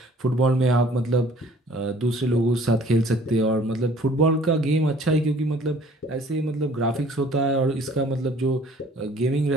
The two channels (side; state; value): both; normal; correlation 0.53